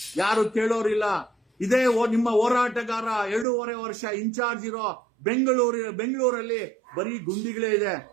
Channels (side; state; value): left; drops out; at 3.5 s